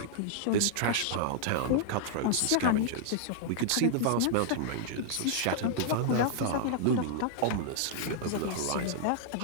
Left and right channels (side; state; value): both; different; correlation -0.01